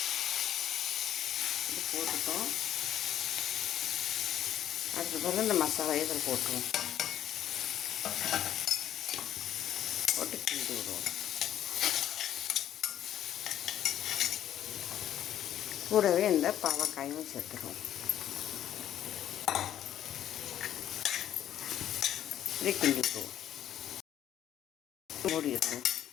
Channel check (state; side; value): quieter; right; 11.2 dB